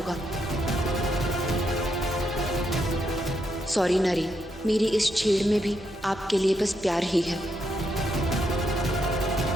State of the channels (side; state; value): both; normal; correlation 0.80